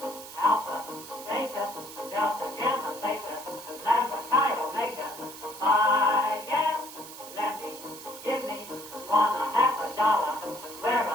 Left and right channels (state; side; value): noise; right; hiss, 14 dB below the sound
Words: Alpha, Beta, Delta, Gamma, Theta, Lambda, Chi, Omega. Phi, Gamma, Lambda, give me $1.50, wear a